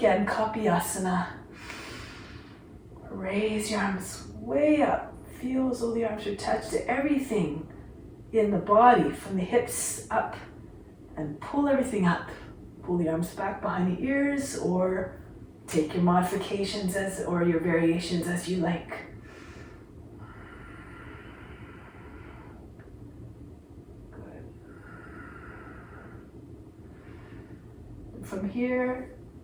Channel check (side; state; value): both; identical; correlation 1.00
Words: Kapiyasana. Raise your arms way up, feel as though the arms are attached to everything in the body, from the hips up, and pull everything up. Pull the arms back behind the ears, or take your modifications or your variations as you like. Good. From here,